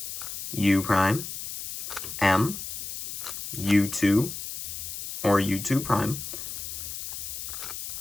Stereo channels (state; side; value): noise; left; hiss, 7 dB below the sound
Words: U prime, M, U2, or U2 prime,